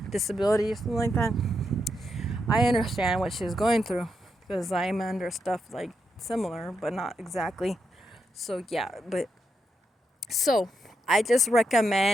disability or something like that. I understand what she's going through because I'm under stuff like similar, but not exactly. So yeah, but so I just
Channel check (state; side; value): normal; both; correlation 0.83